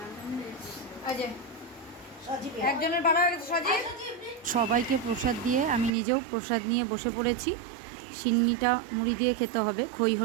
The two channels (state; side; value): drops out; left; at 5.9 s